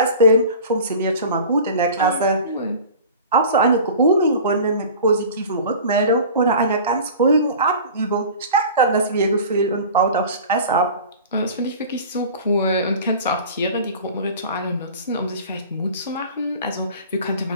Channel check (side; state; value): both; inverted; correlation -0.39